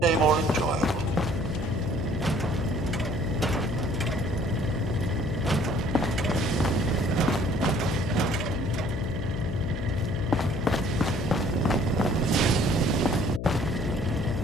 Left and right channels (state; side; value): noise; left; hum, 5 dB below the sound